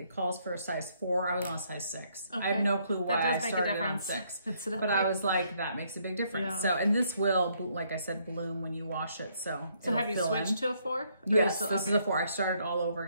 calls for a size 4. I was on a size 6. Okay. I have no clue why I started on 6. But I was like, that makes a big difference. Yeah. So, and this will, like I said, bloom when you wash it. So have you switched to a 4? Yes, this is a 4. I started all over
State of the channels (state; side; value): inverted; both; correlation -0.70